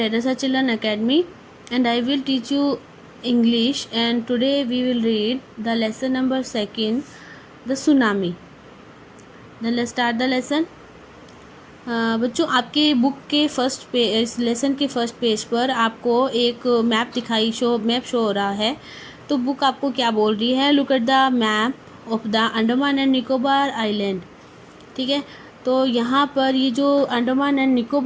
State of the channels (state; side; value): identical; both; correlation 1.00